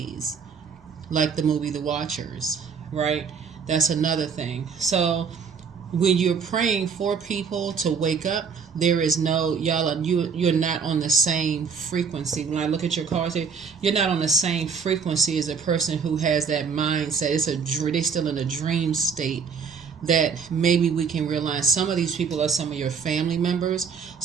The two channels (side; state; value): left; quieter; 6.0 dB